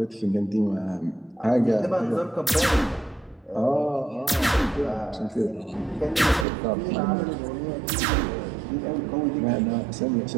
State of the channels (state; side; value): drops out; left; at 6.5 s